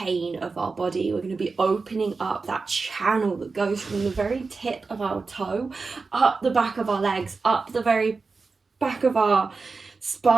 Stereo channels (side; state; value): left; quieter; 4.3 dB